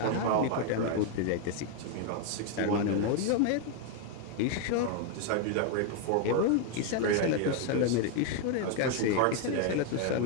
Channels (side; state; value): both; different; correlation 0.01